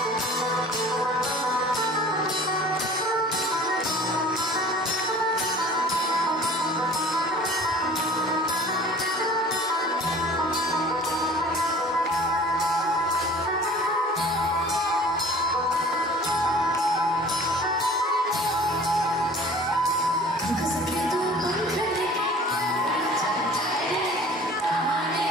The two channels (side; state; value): both; normal; correlation 0.46